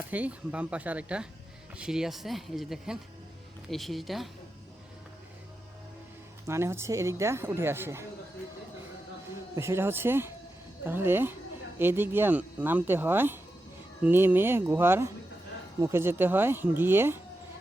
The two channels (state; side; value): normal; both; correlation 0.89